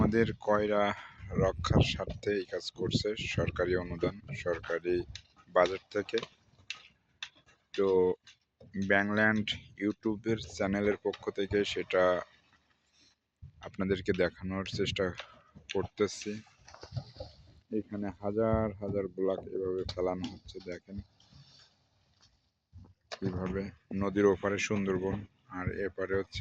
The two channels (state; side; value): identical; both; correlation 1.00